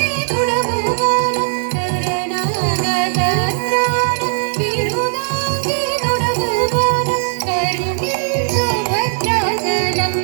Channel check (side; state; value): left; silent; 60 dB below the other